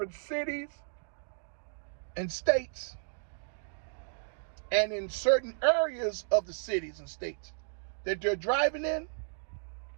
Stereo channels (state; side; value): silent; left; digital silence